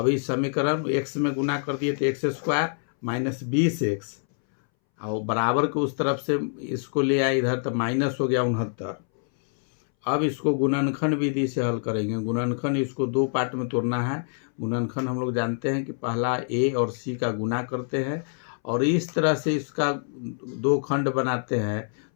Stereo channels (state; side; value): silent; right; 61 dB below the other